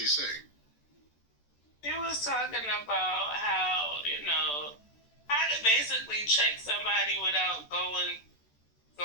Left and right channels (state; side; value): late; right; 14 ms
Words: He was talking about how to basically check somebody without going